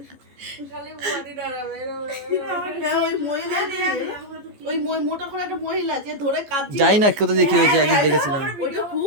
খালি বডি ডরাবে এরম এরম। হ্যাঁ, ওই মহিলা ওই মোটা করে একটা মহিলা যে ধরে কাঁদছে যাই না কোথা দিয়ে কি হয়েছে, একদিন দেখেছিলাম। ওটা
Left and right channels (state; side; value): late; left; 14 ms